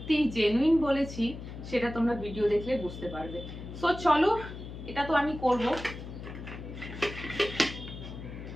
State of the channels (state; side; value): noise; left; hum, 11 dB below the sound